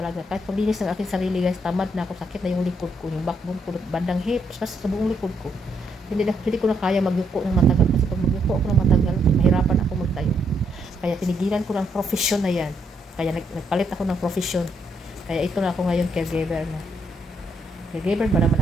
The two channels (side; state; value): both; normal; correlation 0.75